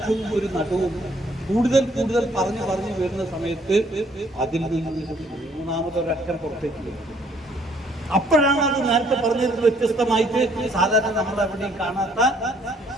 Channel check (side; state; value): both; normal; correlation 0.64